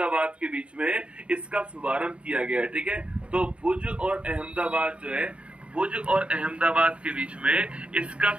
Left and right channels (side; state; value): left; late; 0.059 ms